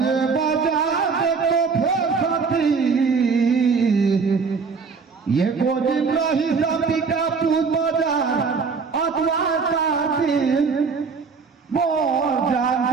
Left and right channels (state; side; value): quieter; left; 5.1 dB